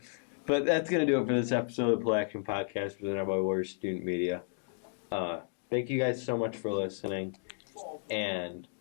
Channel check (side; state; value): right; silent; digital silence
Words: but that's going to do it for this episode of the Play Action Podcast presented by Warriors Student Media. Thank you guys so much for listening, and